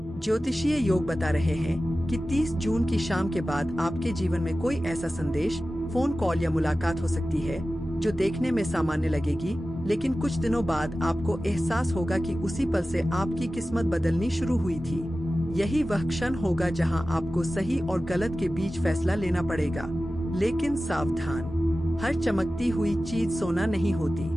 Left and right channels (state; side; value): normal; both; correlation 0.95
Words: ज्योतिषीय योग बता रहे हैं कि 30 जून की शाम के बाद आपके जीवन में कोई ऐसा संदेश, फोन कॉल या मुलाकात हो सकती है जो देखने में सामान्य लगेगी, लेकिन कुछ दिनों बाद आपको एहसास होगा कि उसी पल से आपकी किस्मत बदलनी शुरू हुई थी। यही वह क्षण होगा जहां आपको सही और गलत के बीच फैसला लेना पड़ेगा। लेकिन सावधान, हर चमकती हुई चीज सोना नहीं